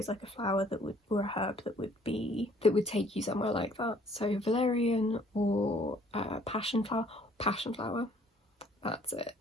like a flower that would, or a herb that would take you somewhere like that. So valerian or passion flower, that's it.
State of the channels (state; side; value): normal; both; correlation 0.59